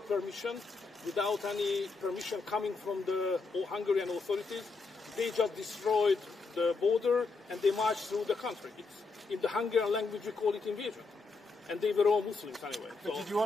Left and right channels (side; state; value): right; quieter; 4.1 dB